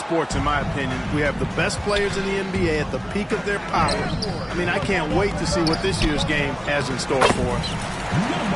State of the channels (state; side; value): identical; both; correlation 1.00